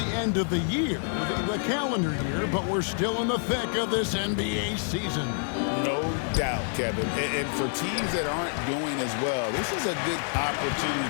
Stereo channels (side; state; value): right; silent; 60 dB below the other